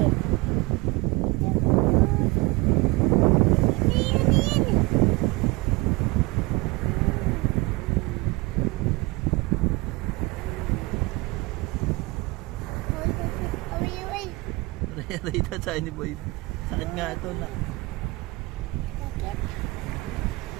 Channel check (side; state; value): left; quieter; 24.2 dB